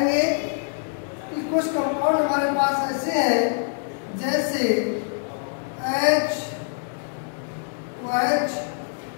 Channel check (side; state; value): right; silent; digital silence